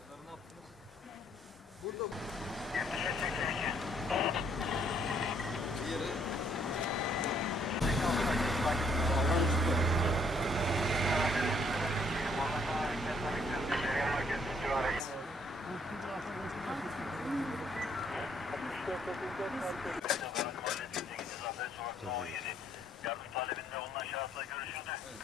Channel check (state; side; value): normal; both; correlation 0.67